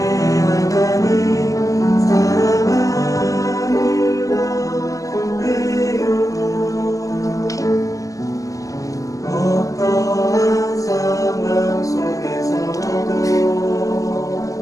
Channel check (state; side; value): late; right; 0.16 ms